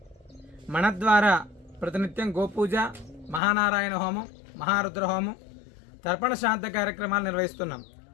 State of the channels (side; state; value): right; drops out; at 3.4 s